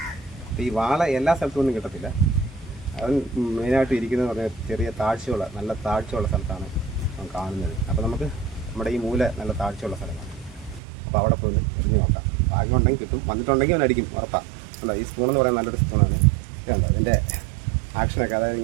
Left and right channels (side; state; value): left; drops out; at 10.8 s